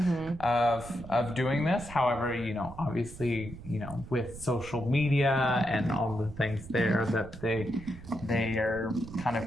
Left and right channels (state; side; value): noise; right; rumble, 14 dB below the sound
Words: of doing this. However, obviously, with social media and all the things there, that they are kind